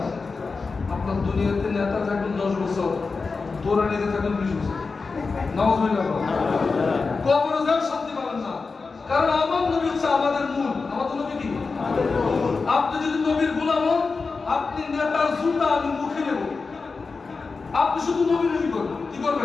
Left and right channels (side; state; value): right; quieter; 4.4 dB